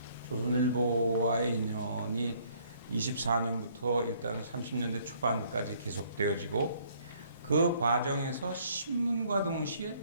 조선일보와의 인연이 24년부터 일단 30년대 초반까지 계속되어지고, 그 과정에서 신문과 동시에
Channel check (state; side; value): inverted; both; correlation -0.63